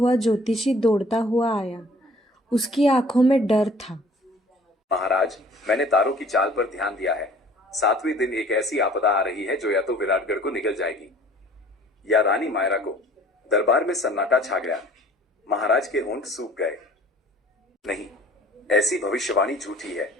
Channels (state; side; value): normal; both; correlation 0.51